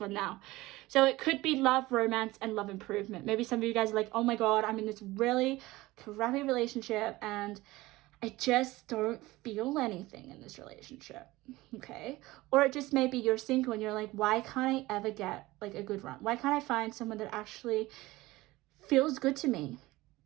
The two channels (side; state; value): left; quieter; 19.2 dB